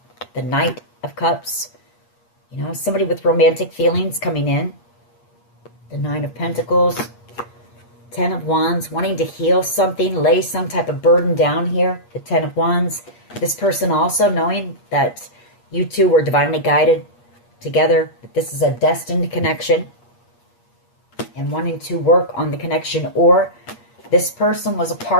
the Knight of Cups. You know, somebody with romantic feelings coming in. The Nine of Pentacles. Ten of Wands, wanting to heal something, lay some type of burden down here. The Ten of Wands. This person also knowing that you two were divinely guided together. That this is a destined connection. And wanting to work on the connection. Or this person was a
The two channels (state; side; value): late; right; 8.4 ms